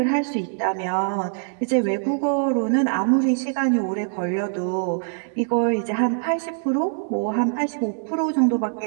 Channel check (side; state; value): left; silent; digital silence